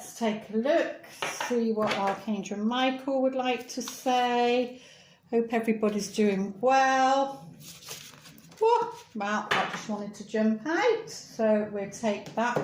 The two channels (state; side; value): identical; both; correlation 1.00